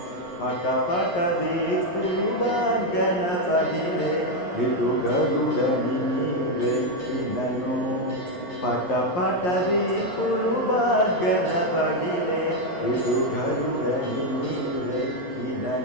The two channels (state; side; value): late; right; 11 ms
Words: పటపట దీపులు బాగన పగిలే. ఇటు గరుడని నీవెక్కినను, పటపట దీపులు బాగన పగిలే. ఇటు గరుడని